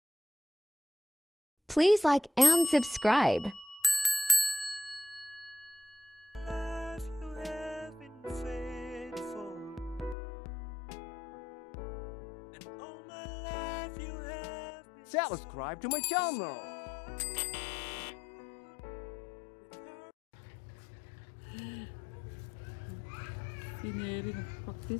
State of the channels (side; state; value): right; drops out; at 10.2 s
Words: Please like and subscribe. Subscribe to my channel. Si Neri